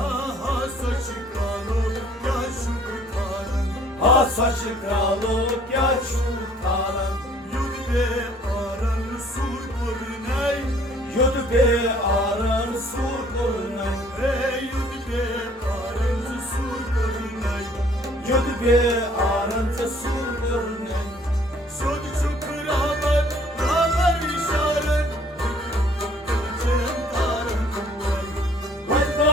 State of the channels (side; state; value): both; normal; correlation 0.58